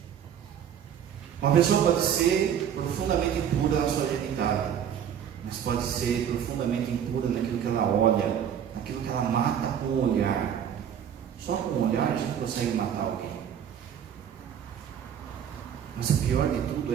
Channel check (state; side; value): quieter; left; 8.9 dB